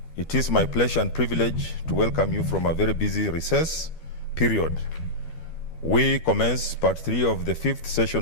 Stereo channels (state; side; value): late; right; 12 ms